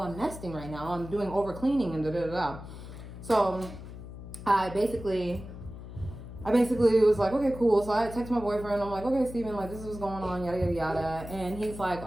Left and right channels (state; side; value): noise; left; hum, 12 dB below the sound